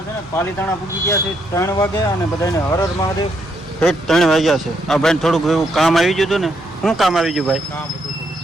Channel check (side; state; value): both; normal; correlation 0.76